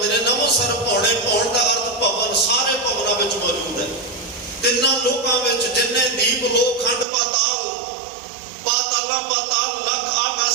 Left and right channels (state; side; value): drops out; left; at 7.1 s